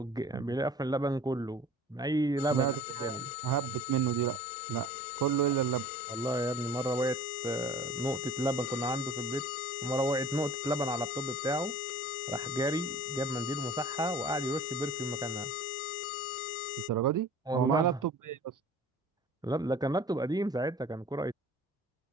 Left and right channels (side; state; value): both; normal; correlation 0.45